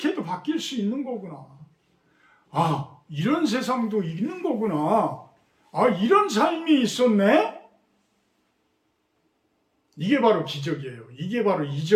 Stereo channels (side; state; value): both; identical; correlation 1.00